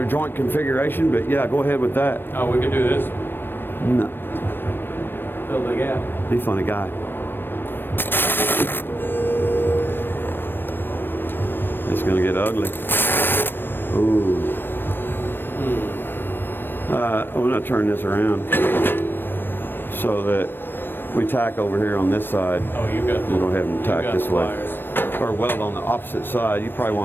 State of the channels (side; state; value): right; late; 0.097 ms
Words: joint configuration, but yeah, go ahead with that. Oh, we could do this. No, Fill the gap. he's a funny guy. It's gonna get ugly. Ooh. I'm gonna turn this around so that we tack over here on this side. Oh, you got. We'll go ahead and tack this way. Pliers. Or weld on the opposite side. You probably